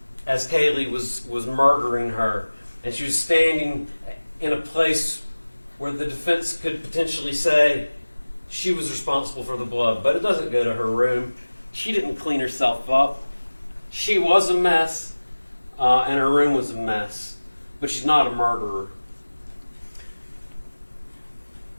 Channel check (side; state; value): both; inverted; correlation -1.00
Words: as Kaylee was murdering her. And she was standing in a place where the defense could potentially say she was responsible for the blood. But it doesn't go to her room. She didn't clean herself up. She was a mess, and her room was a mess. But she's not a murderer.